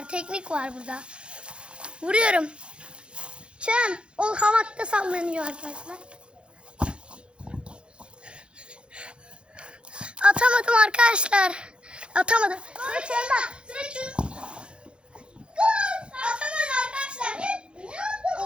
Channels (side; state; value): left; late; 0.056 ms